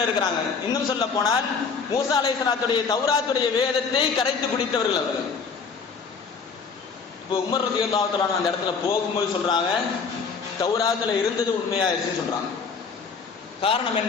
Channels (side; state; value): right; quieter; 5.3 dB